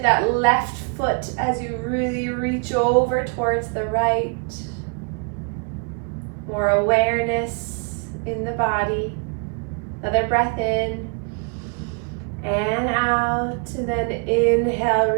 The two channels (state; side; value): quieter; left; 37.3 dB